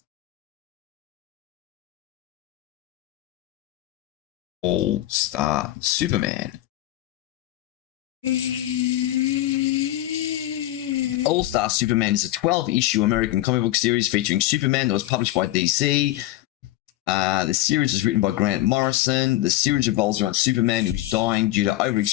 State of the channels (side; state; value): right; quieter; 15.6 dB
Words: All-Star Superman. All-Star Superman is a 12-issue American comic book series featuring Superman that was published by DC. The series is written by Grant Morrison. The series revolves around Superman, who's dying due to